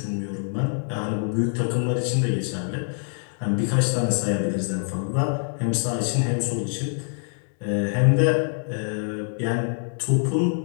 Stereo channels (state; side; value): silent; right; 62 dB below the other